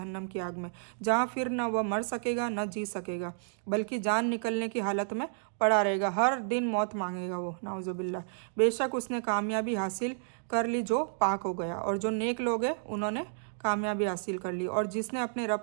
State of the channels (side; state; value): left; silent; digital silence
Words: की आग में, जहाँ फिर न वह मर सकेगा न जी सकेगा, बल्कि जान निकलने की हालत में पड़ा रहेगा। हर दिन मौत मांगेगा वो, नाउजुबिल्लाह। बेशक उसने कामयाबी हासिल कर ली जो पाक हो गया, और जो नेक लोग हैं उन्होंने कामयाबी हासिल कर ली, और जिसने अपने